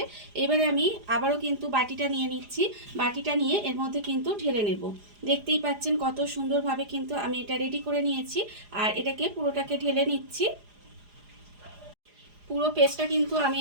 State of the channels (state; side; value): late; left; 4.9 ms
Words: এবারে আমি আবারও কিন্তু বাটিটা নিয়ে নিচ্ছি। বাটিটা নিয়ে এর মধ্যে কিন্তু ঢেলে নেব। দেখতেই পাচ্ছেন কত সুন্দরভাবে কিন্তু আমি এটা রেডি করে নিয়েছি, আর এটাকে পুরোটাকে ঢেলে নিচ্ছি। পুরো পেস্টটা কিন্তু আমি